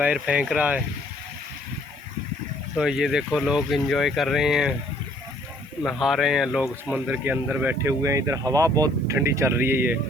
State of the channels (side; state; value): right; noise; hiss, 30 dB below the sound